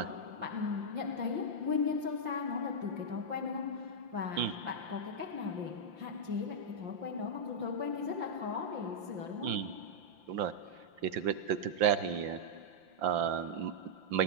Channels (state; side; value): late; left; 5.8 ms